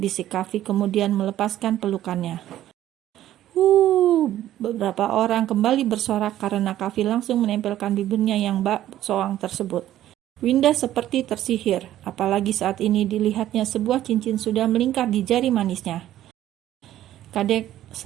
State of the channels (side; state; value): left; quieter; 12.9 dB